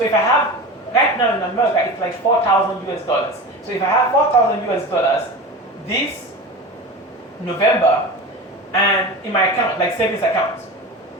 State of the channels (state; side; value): normal; both; correlation 0.30